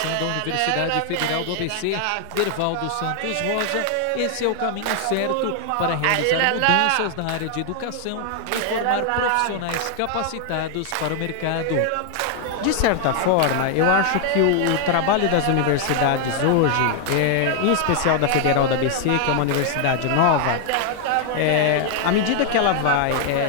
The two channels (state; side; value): different; both; correlation 0.00